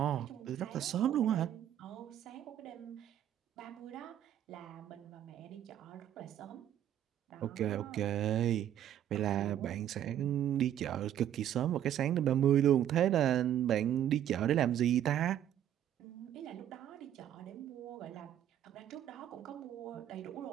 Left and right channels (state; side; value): quieter; left; 10.8 dB